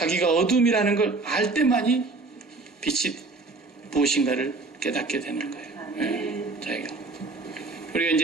어둠이라는 걸 알 때만이 빛이 무엇인가를 깨닫게 되는 거예요. 예, 자기가. 우리가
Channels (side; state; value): left; quieter; 3.6 dB